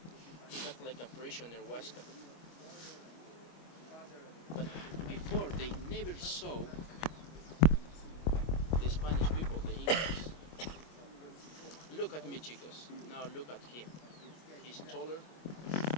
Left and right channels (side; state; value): right; late; 25 ms